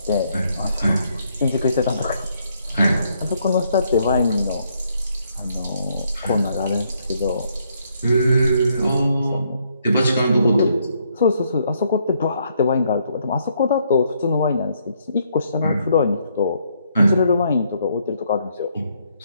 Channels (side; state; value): both; inverted; correlation -0.72